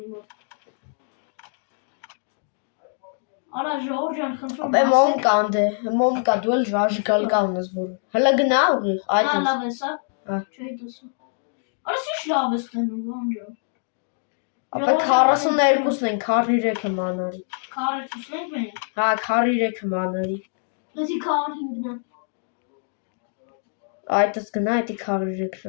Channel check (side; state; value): right; silent; digital silence